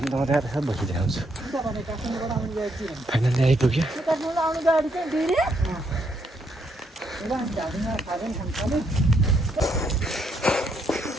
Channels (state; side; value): normal; both; correlation 0.75